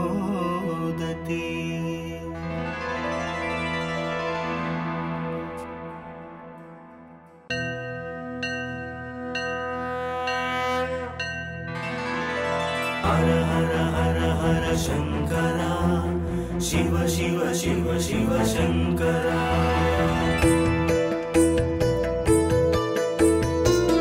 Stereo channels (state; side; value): identical; both; correlation 1.00